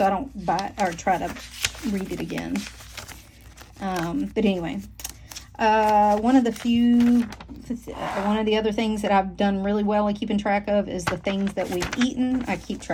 I don't buy or try to read it again. But anyway, one of the other things that I've done really well at keeping track of is the things that we've eaten. I keep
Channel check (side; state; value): both; identical; correlation 1.00